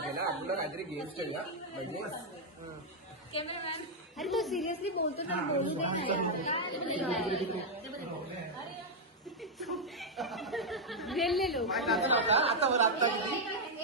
आपल्याला काहीतरी गेम्स खेळूया म्हणजे अरे तो सिरियसली बोलतो तर बोलू दे. लोक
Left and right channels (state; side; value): normal; both; correlation -0.01